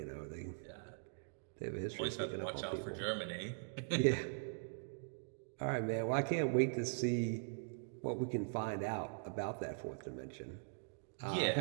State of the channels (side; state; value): left; silent; digital silence